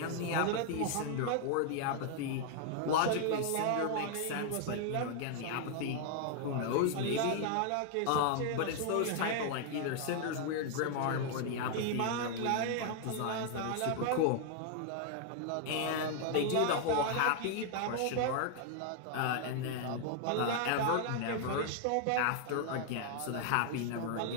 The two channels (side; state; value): both; different; correlation 0.00